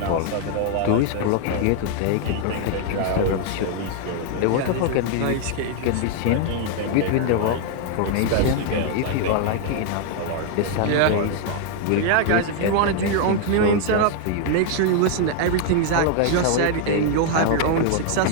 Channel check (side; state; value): both; different; correlation 0.00